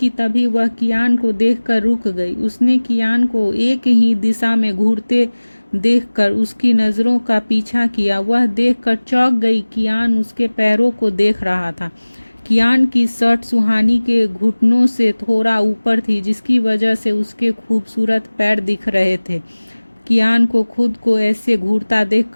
तभी वह कियान को देखकर रुक गई। उसने कियान को एक ही दिशा में घूरते देखकर उसकी नज़रों का पीछा किया। वह देखकर चौंक गई। कियान उसके पैरों को देख रहा था। कियान की शर्ट सुहानी के घुटनों से थोड़ा ऊपर थी, जिसकी वजह से उसके खूबसूरत पैर दिख रहे थे। कियान को खुद को ऐसे घूरता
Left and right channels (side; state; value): both; inverted; correlation -1.00